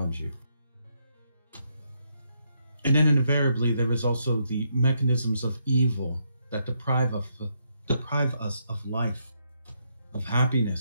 you. And then invariably, there is also the mechanisms of evil that deprive us of life, of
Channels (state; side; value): inverted; both; correlation -0.78